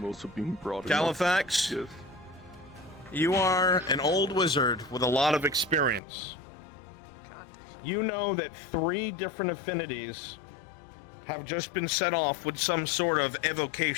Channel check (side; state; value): right; drops out; at 6.0 s